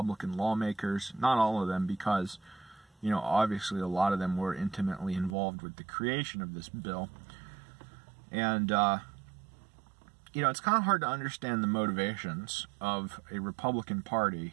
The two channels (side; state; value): left; drops out; at 5.4 s